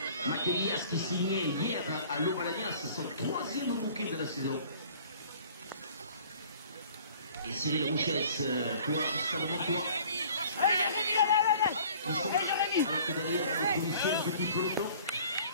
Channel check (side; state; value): both; inverted; correlation -0.50